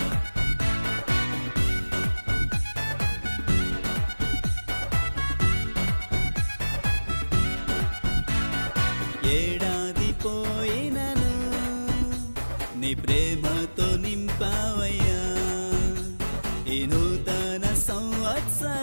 ఏడాది పోయినను నీ ప్రేమతో నింపావయ్యా. ఈ నూతన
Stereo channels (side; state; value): both; inverted; correlation -1.00